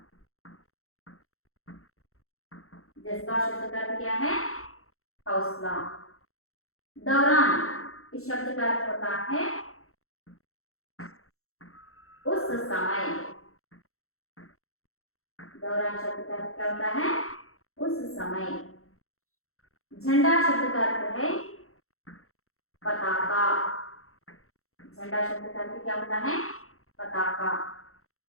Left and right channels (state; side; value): late; right; 0.63 ms